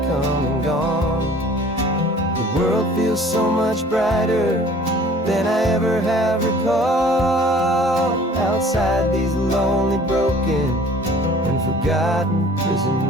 come and gone. The world feels so much brighter than I ever have recalled. Outside these lonely, broken, and forgotten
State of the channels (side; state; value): both; normal; correlation 0.50